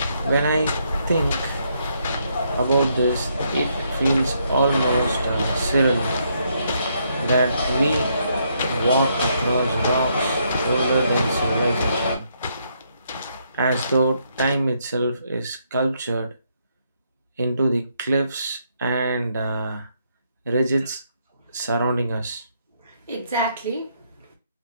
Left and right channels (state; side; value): inverted; both; correlation -0.74